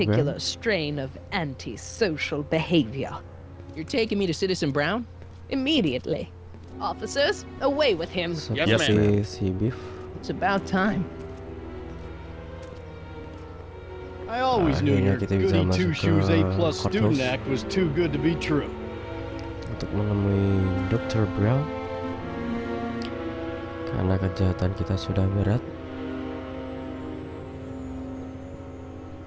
program. strain of antisocial behavior. You're taking me to Citizen Brown? Immediately. Officers, away with him. seperti si Biff. It's about time. I always knew Akhirnya your kita bisa goody masuk two-shoes ke A+ student courthouse act was too good to be true. untuk menemui Dr. Brown karena kejahatan kita sudah berat.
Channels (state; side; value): identical; both; correlation 1.00